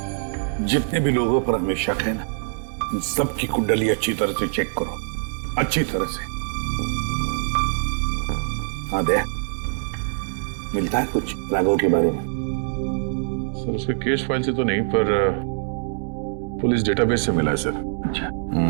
जितने भी लोगों पर हमें शक है ना, उन सबकी कुंडली अच्छी तरह से चेक करो, अच्छी तरह से। हाँ दे, मिलता है कुछ राघव के बारे में? सर, उसके केस फाइल से तो नहीं, पर पुलिस डेटाबेस से मिला है सर। अच्छा।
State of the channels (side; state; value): left; silent; digital silence